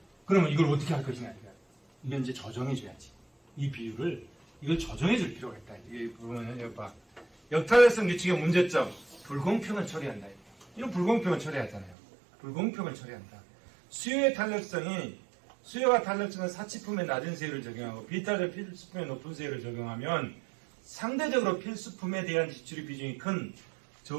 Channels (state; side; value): drops out; left; at 12.0 s